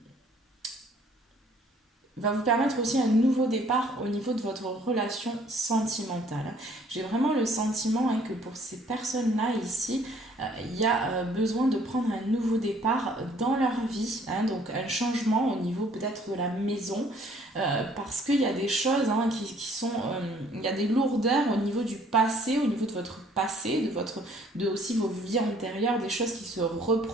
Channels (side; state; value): both; normal; correlation 0.59